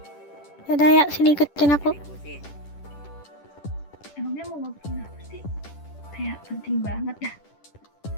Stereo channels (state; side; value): late; right; 10 ms